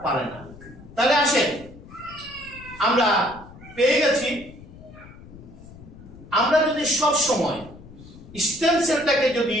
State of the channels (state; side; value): noise; left; rumble, 19 dB below the sound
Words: পারে না। তাহলে আসেন, আমরা পেয়ে গেছি, আমরা যদি সব সময় স্টেম সেলটাকে যদি